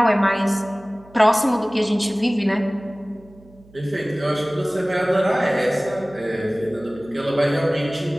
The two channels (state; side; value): noise; right; hum, 26 dB below the sound